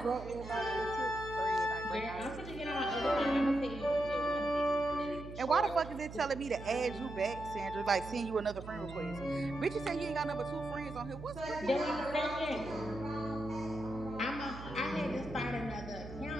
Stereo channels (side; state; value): right; noise; hum, 12 dB below the sound